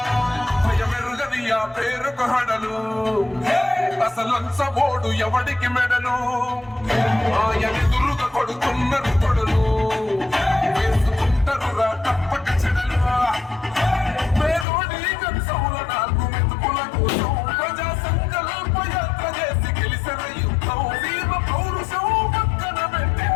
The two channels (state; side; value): drops out; right; at 14.7 s